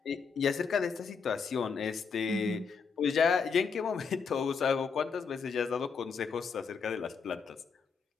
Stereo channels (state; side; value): quieter; right; 5.7 dB